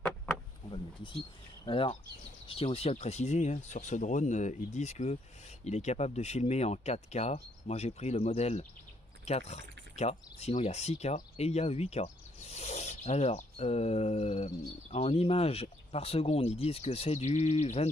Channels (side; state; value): both; normal; correlation 0.71